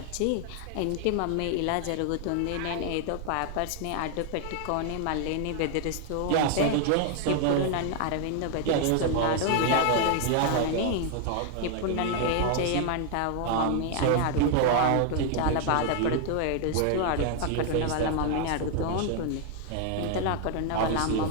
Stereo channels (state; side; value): different; both; correlation 0.00